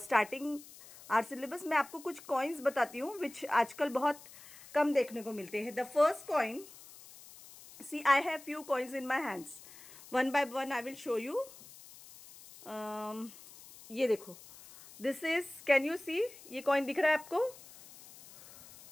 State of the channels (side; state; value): left; noise; hiss, 19 dB below the sound